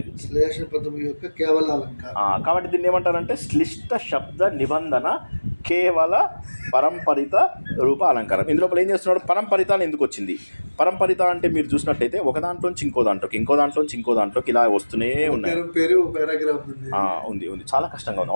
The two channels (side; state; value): both; inverted; correlation -1.00